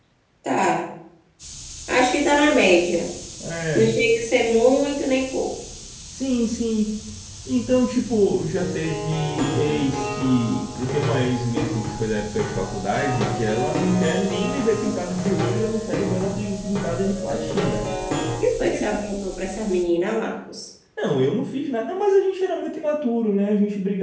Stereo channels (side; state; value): both; identical; correlation 1.00